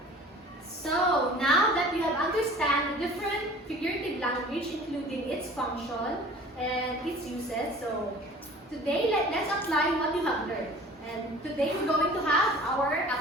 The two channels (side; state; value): both; normal; correlation 0.45